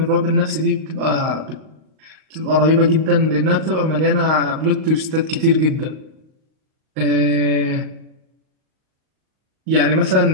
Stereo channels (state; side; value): late; left; 38 ms